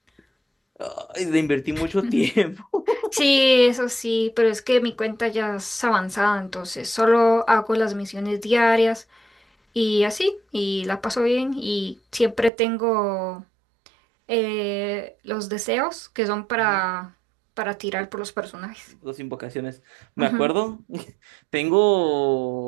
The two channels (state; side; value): drops out; left; at 12.5 s